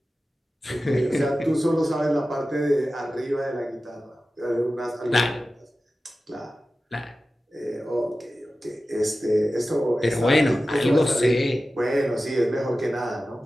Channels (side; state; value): both; normal; correlation 0.95